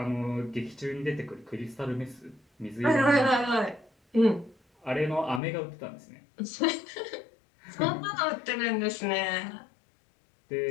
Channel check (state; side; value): drops out; right; at 5.4 s